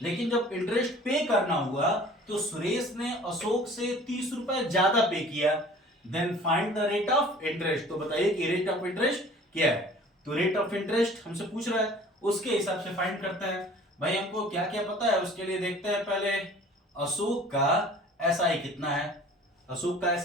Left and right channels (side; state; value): both; normal; correlation 0.48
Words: लेकिन जब इंटरेस्ट पे करना हुआ तो सुरेश ने अशोक से 30 रुपए ज्यादा पे किया। Then find the rate of interest, तो बताइए कि रेट ऑफ इंटरेस्ट क्या है। तो रेट ऑफ इंटरेस्ट हमसे पूछ रहा है, उसके हिसाब से फाइंड करते हैं। भाई हमको क्या क्या पता है उसके लिए देखते हैं पहले, अशोक का SI कितना है, अशोक का